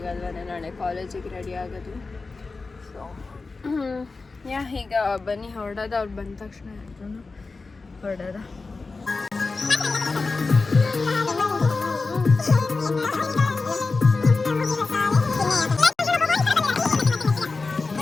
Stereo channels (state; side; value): quieter; right; 3.9 dB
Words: ನಾಳೆ ಕಾಲೇಜಿಗೆ ರೆಡಿ ಆಗೋದು. ಸೊ ಈಗ ಬನ್ನಿ ಹೊರಡೋದ. ಅವ್ರು ಬಂದ ತಕ್ಷಣ ಎಲ್ಲರೂ ಹೊರಡೋದ.